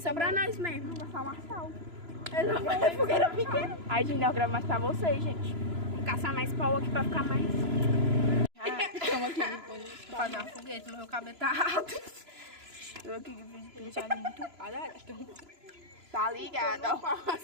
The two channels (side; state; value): left; late; 3.0 ms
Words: pra nós mesmo. Vai falar sal. Não vai ser fogueira pequena. Aí, gente, nós gravamos mais pra vocês, gente. Vamos caçar mais pau aqui pra ficar mais. Estamos aqui pra fazer uma fogueira, mas meu cabelo tá alto. Eu aqui que fiz penteado muito quadrado. Tá ligado, ó.